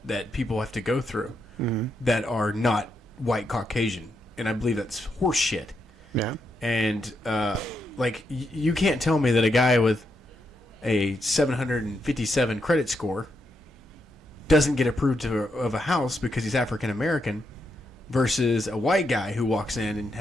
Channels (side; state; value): both; normal; correlation 0.81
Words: that people have to go through that are not white Caucasian, and I believe that's horse shit. Yeah. And you can't tell me that a guy with a 757 credit score doesn't get approved of a house because he's African American versus a white guy who walks in and